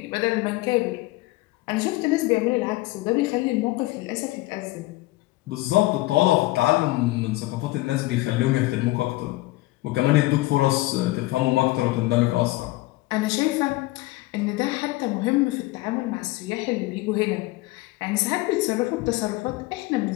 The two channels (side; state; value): right; quieter; 19.6 dB